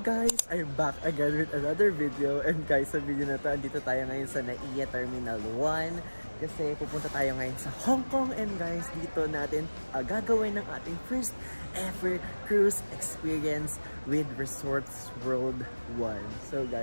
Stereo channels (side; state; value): both; inverted; correlation -1.00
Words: I'm back again with another video. And guys, sa video na to, andito tayo ngayon sa NAIA Terminal 1. Kasi pupunta tayo ngayon sa Hong Kong. And guys, dito natin gagawin ng ating first ever cruise experience with Resorts World 1. So